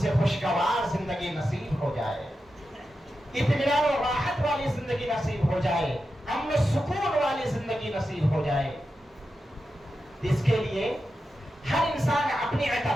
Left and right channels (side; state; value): both; normal; correlation 0.90